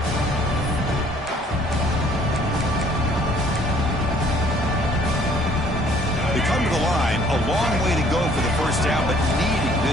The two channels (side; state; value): both; normal; correlation 0.59